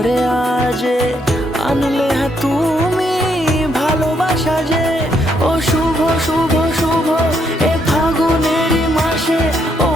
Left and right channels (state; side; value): normal; both; correlation 0.74